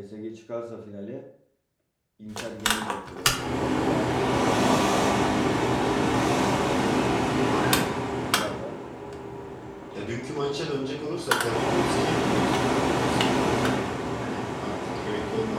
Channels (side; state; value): both; identical; correlation 1.00